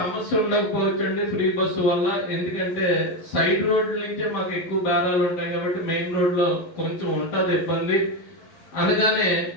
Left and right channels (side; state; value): right; late; 11 ms